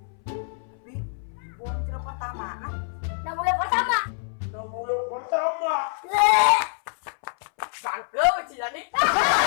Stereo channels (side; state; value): right; silent; 61 dB below the other